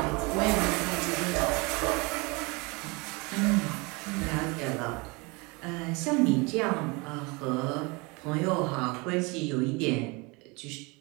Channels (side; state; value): left; quieter; 27.3 dB